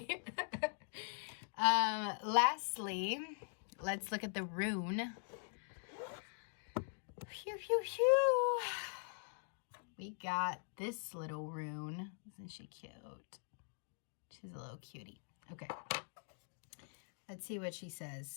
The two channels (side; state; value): right; silent; digital silence